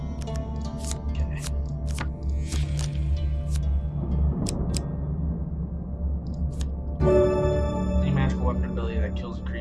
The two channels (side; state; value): both; identical; correlation 1.00